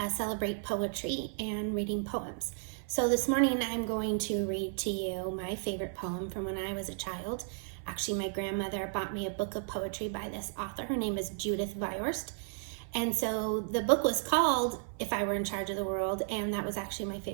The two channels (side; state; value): left; silent; 55 dB below the other